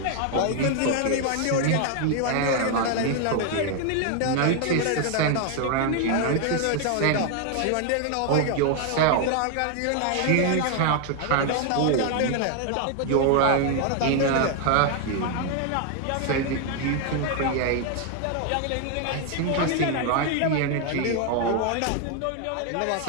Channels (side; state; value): both; different; correlation 0.00